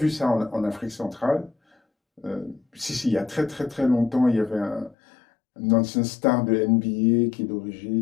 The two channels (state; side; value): drops out; right; at 5.0 s